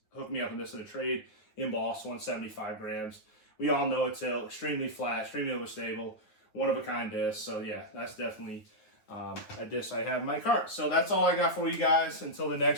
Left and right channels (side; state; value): right; late; 9.3 ms